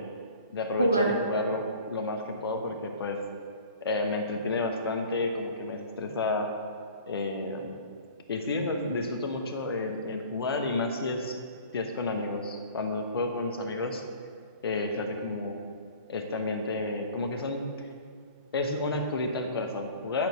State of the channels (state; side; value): inverted; both; correlation -0.46